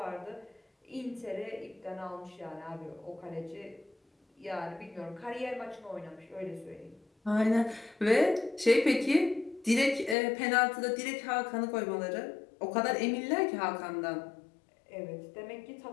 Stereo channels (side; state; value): right; drops out; at 10.2 s